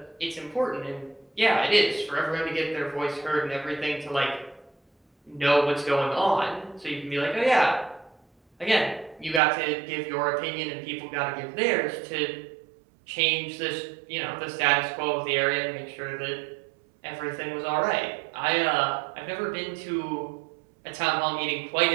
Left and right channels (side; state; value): left; drops out; at 9.4 s